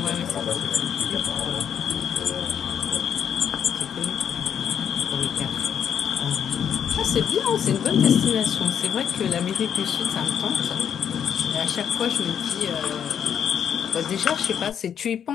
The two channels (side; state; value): right; quieter; 8.5 dB